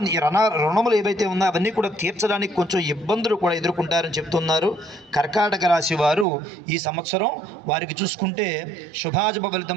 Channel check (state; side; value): drops out; left; at 6.2 s